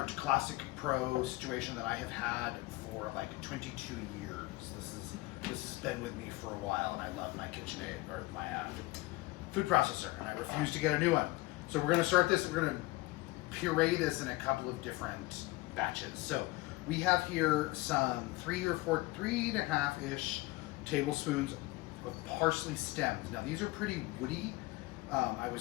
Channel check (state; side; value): quieter; right; 21.2 dB